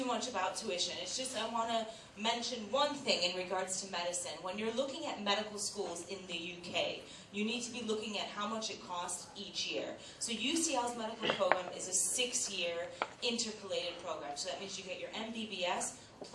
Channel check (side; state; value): both; identical; correlation 1.00